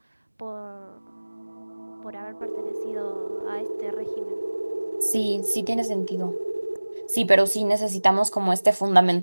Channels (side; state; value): both; inverted; correlation -1.00